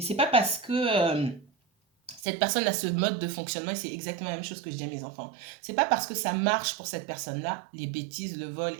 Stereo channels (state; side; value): drops out; left; at 2.2 s